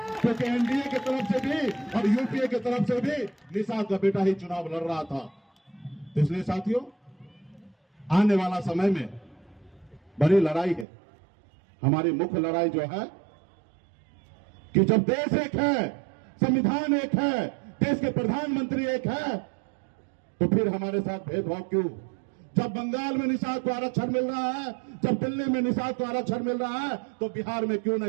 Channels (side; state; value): left; drops out; at 10.9 s